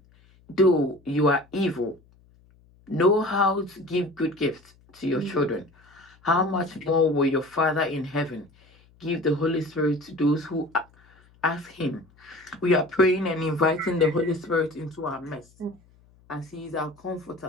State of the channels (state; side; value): noise; left; hum, 30 dB below the sound